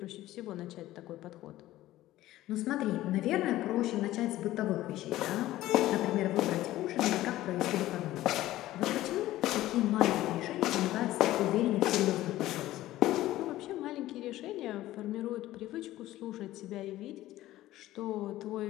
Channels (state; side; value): quieter; right; 15.4 dB